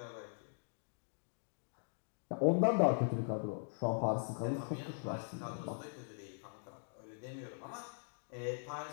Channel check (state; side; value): silent; right; digital silence